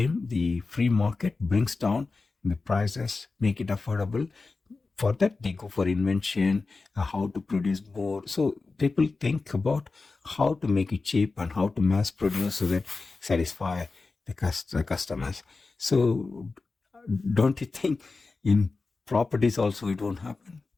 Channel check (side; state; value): right; quieter; 3.9 dB